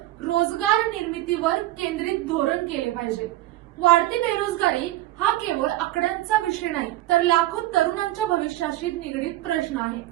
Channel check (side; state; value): left; quieter; 16.0 dB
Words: रोजगार निर्मितीवर केंद्रित धोरण केले पाहिजे. वाढती बेरोजगारी हा केवळ आकड्यांचा विषय नाही, तर लाखो तरुणांच्या भविष्याशी निगडीत प्रश्न आहे.